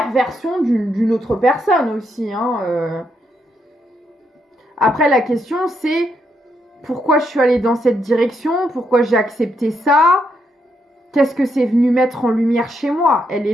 d'une autre personne aussi, hein. Après, la question, c'est pourquoi je suis allée dans cette direction, pourquoi j'ai accepté ça, qu'est-ce que c'est venu mettre en lumière chez moi. Elle est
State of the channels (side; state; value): both; normal; correlation 0.78